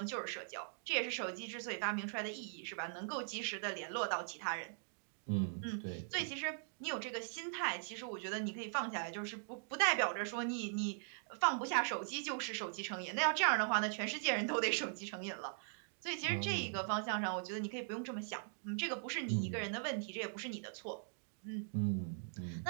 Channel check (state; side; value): silent; left; digital silence